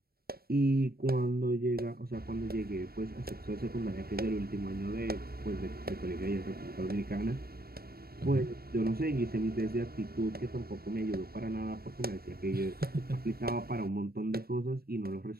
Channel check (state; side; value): late; left; 0.44 ms